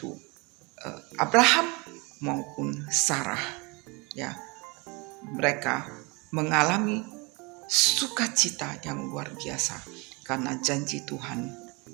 Abraham maupun Sarah ya, mereka mengalami sukacita yang luar biasa karena janji Tuhan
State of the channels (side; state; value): left; quieter; 28.0 dB